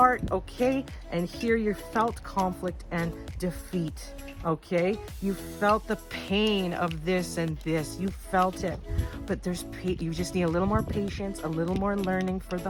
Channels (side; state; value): both; identical; correlation 1.00